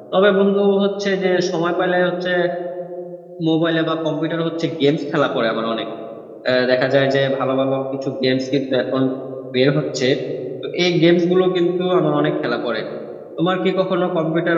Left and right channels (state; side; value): identical; both; correlation 1.00